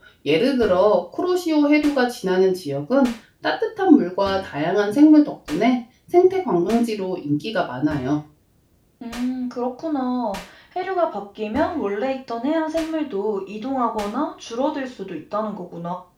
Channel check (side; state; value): both; identical; correlation 1.00